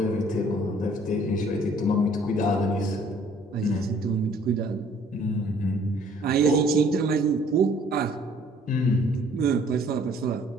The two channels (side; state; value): both; normal; correlation 0.58